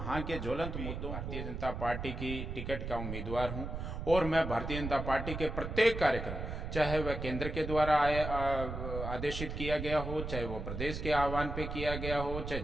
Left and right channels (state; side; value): noise; right; rumble, 5 dB below the sound